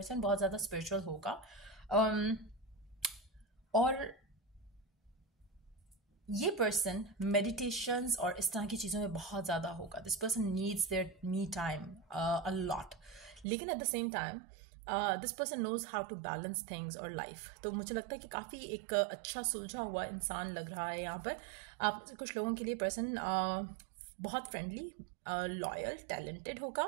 बहुत ज़्यादा स्पिरिचुअल होगा। और ये पर्सन मेडिटेशंस और इस तरह की चीज़ों में बहुत ज़्यादा होगा। This person needs their me time a lot, लेकिन at the same time this person knows how to balance things और लाइफ। तो मुझे लगता है कि काफ़ी एक अच्छा सुलझा हुआ इंसान लग रहा है यहाँ पर। आप कुछ लोगों के लिए पर्सन बहुत फ्रेंडली, लॉयल, टैलेंटेड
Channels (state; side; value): drops out; left; at 13.5 s